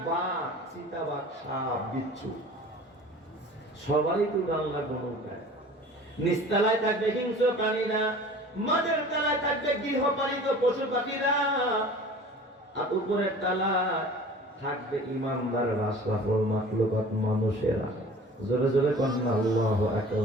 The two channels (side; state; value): both; normal; correlation 0.43